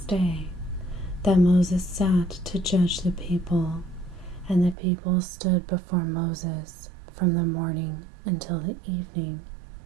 day that Moses sat to judge the people, and the people stood before Moses from the morning until the evening.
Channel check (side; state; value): left; drops out; at 4.8 s